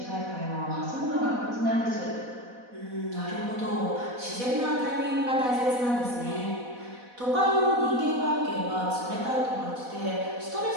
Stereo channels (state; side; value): late; left; 4.1 ms